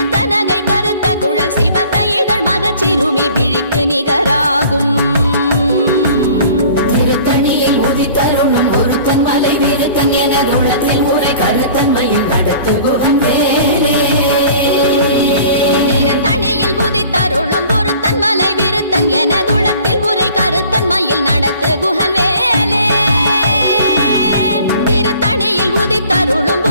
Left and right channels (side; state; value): both; inverted; correlation -0.49